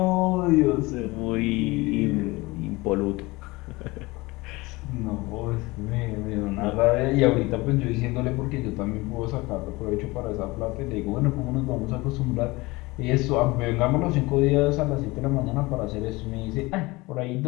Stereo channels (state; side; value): quieter; right; 22.4 dB